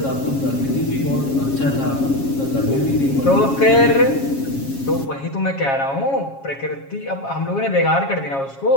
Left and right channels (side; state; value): right; late; 7.4 ms